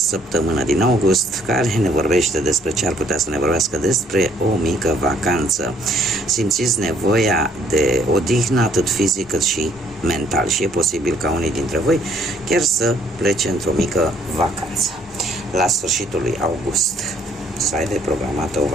din august, care ne vorbește despre ce ar putea să ne vorbească despre o mică vacanță. Simțiți nevoia de odihnă atât fizic cât și mental și e posibil ca unii dintre voi chiar să plece într-o mică vacanță la sfârșitul lui august, să aibă programată o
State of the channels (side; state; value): both; normal; correlation 0.63